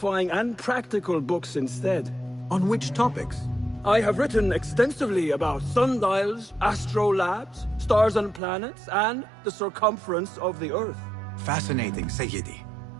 and practical books instead. On which topics? I have written extensively about sundials, astrolabes, stars and planets, and the circumference of the Earth. Fascinating, Sayyidi.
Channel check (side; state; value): left; drops out; at 8.4 s